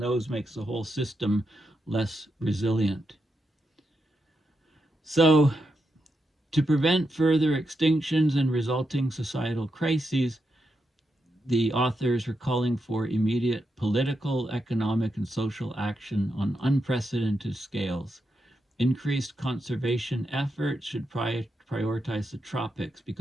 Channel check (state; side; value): normal; both; correlation 0.85